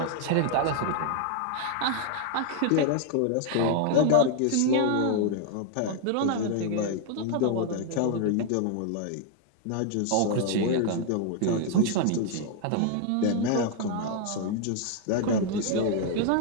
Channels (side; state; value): both; different; correlation 0.00